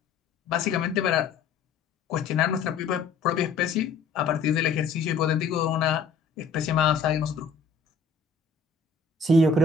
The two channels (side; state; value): right; quieter; 4.8 dB